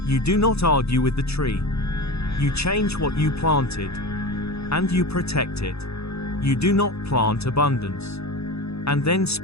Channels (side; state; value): right; late; 0.79 ms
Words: you do not argue with the tree. You change what you planted, and you protect it. You do not plant abundance, and then